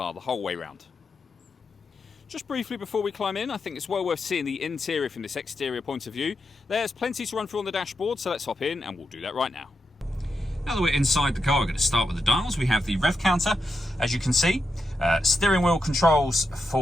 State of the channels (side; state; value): both; normal; correlation 0.86